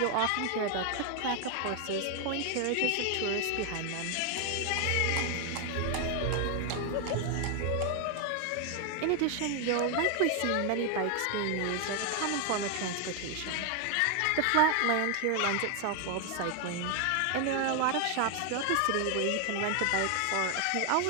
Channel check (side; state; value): both; different; correlation 0.00